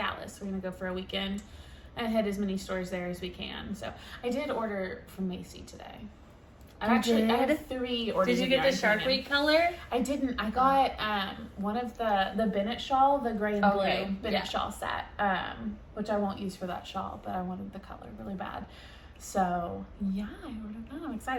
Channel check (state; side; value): identical; both; correlation 1.00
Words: We're gonna go for a weekend and hit as many stores there as we can. So I did order from Macy today. I had 3 orders. Did you get the Shark Week color? I didn't. I got one of the Bennett shawl, the gray and Okay, blue Bennett yeah. shawl set, which I won't use for that shawl, but I wanted the color really bad. So yeah, I ordered that. I'm